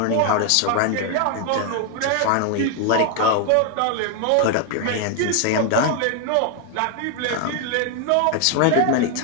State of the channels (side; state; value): both; different; correlation 0.01